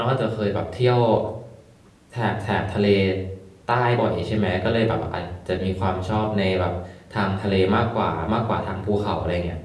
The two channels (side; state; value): both; identical; correlation 1.00